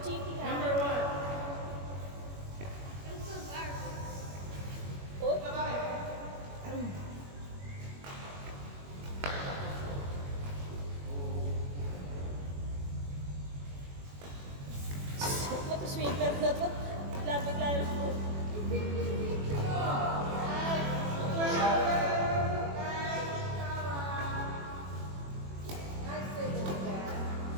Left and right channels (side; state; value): left; late; 21 ms